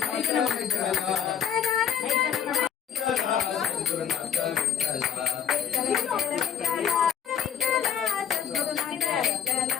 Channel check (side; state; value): right; quieter; 8.3 dB